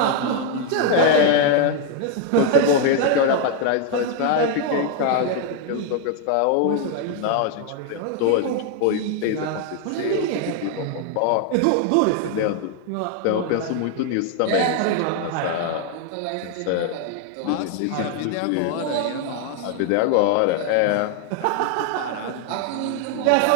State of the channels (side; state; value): both; different; correlation 0.00